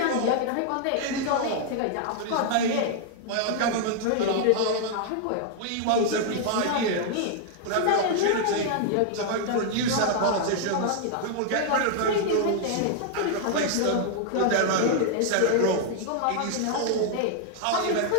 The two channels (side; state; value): both; different; correlation 0.00